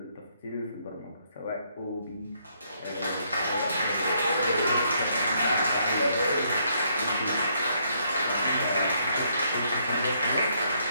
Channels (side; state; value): both; inverted; correlation -0.71